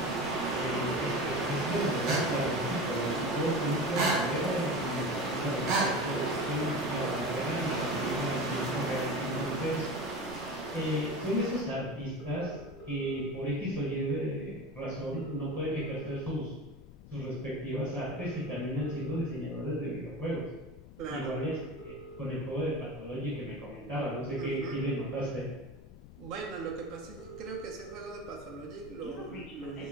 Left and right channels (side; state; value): left; noise; rumble, 17 dB below the sound